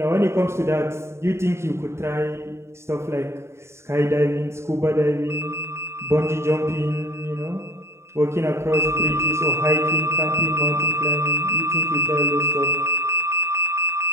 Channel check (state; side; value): late; left; 0.13 ms